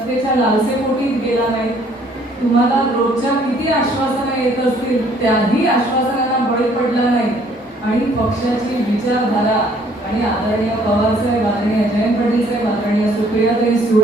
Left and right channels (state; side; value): normal; both; correlation 0.61